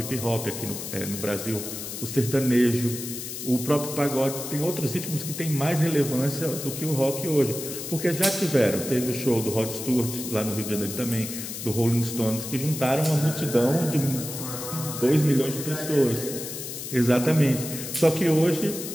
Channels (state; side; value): noise; left; hiss, 8 dB below the sound